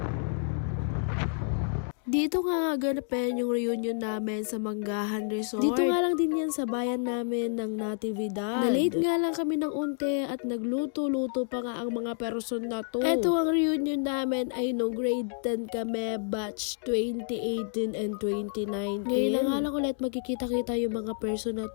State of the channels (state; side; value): silent; right; 58 dB below the other